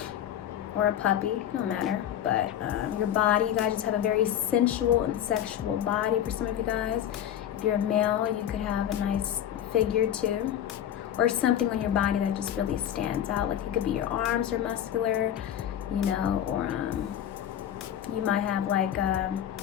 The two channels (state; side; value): quieter; right; 10.5 dB